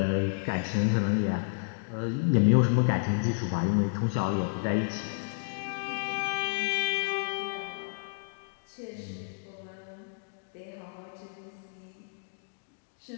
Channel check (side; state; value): right; silent; digital silence